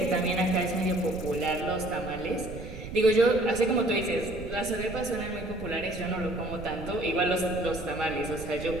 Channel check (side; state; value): right; noise; rumble, 12 dB below the sound